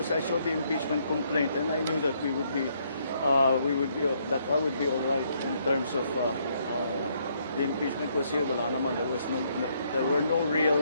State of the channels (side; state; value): both; inverted; correlation -0.71